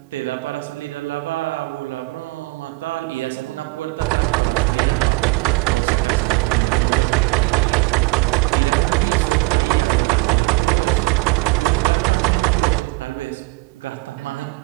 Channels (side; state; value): left; quieter; 24.6 dB